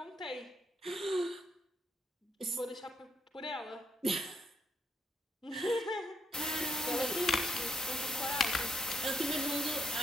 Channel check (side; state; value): both; normal; correlation 0.77